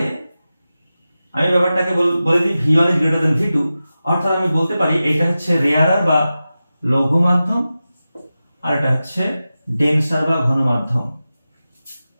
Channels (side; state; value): both; inverted; correlation -0.94